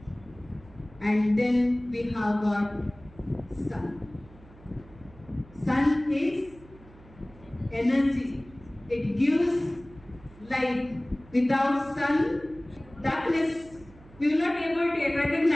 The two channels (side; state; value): right; noise; hum, 23 dB below the sound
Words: And then we have got sun. Sun is energy. It gives light. Without sun, darkness, we will not be able to